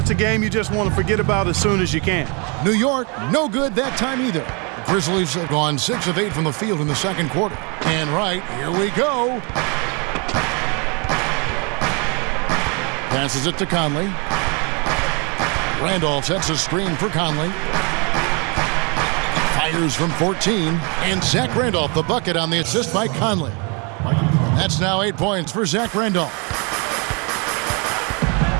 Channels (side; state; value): left; quieter; 33.0 dB